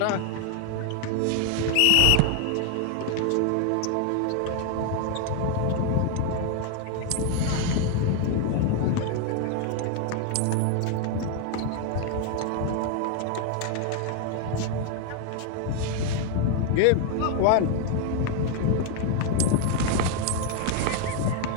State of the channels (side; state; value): both; different; correlation 0.00